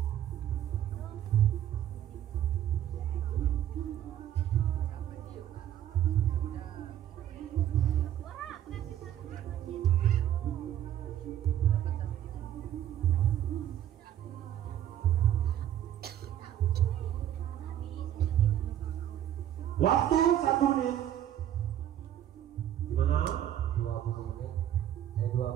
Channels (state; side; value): quieter; left; 11.3 dB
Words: Waktu 1 menit. Gimana? 20 menit.